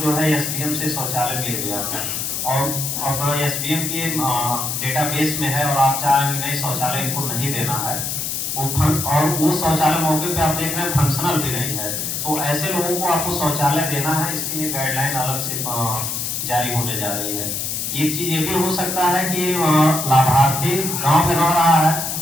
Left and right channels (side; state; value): left; noise; hiss, 2 dB below the sound